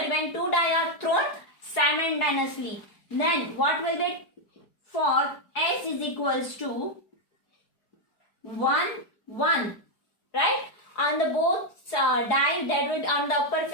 2 dice are thrown simultaneously, then what will be for S is equals to 1, 1. Right? On the both die, that will on the upper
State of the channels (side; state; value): right; late; 4.7 ms